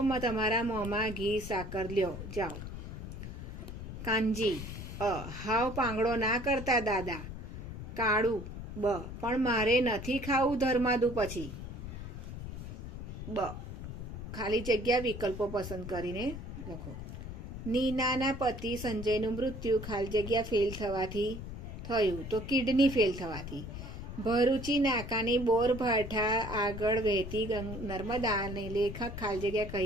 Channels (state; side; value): noise; left; rumble, 9 dB below the sound